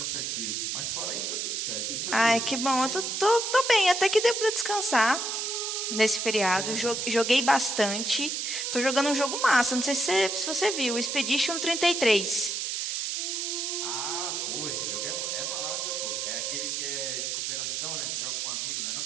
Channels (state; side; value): noise; right; hiss, 2 dB below the sound